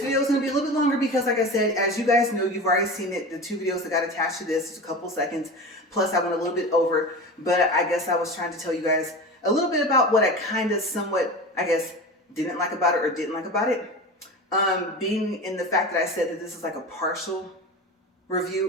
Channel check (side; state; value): both; normal; correlation 0.30